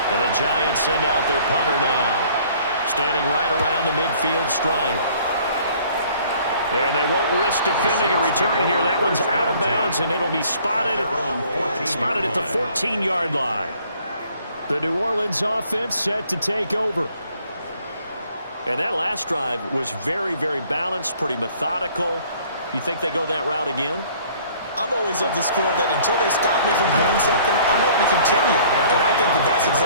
And the Giants send out their punter now. Standing right around the midfield stripe. And they won't risk defending a return here. That one's out of bounds, and it'll be spotted at the 14-yard line. The New Orleans offense set to take over. And that last drive was very, very balanced, pretty methodical. You think they go that route again? I'm always of the school that until they stop me from doing something, I'm going to continue. And I think that that's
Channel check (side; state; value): both; inverted; correlation -0.57